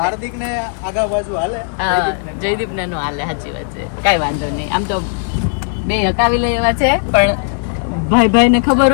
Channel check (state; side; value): silent; right; 69 dB below the other